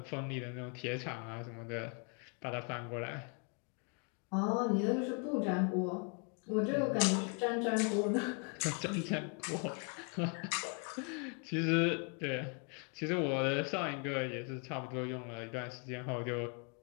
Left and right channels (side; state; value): right; quieter; 36.7 dB